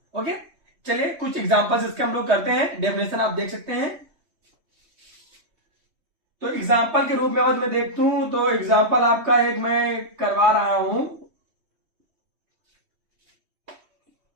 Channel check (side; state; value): left; late; 3.2 ms